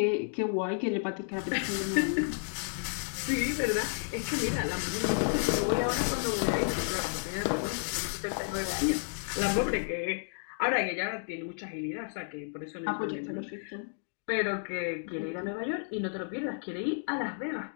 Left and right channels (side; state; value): right; silent; digital silence